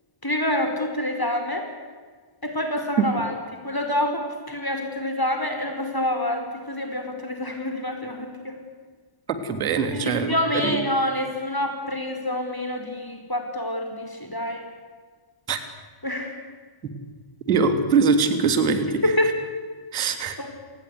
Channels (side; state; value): right; late; 1.0 ms